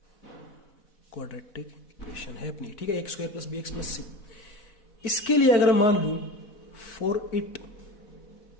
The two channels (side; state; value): right; late; 4.4 ms